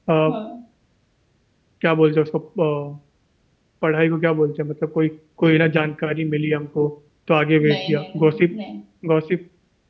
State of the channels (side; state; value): both; identical; correlation 1.00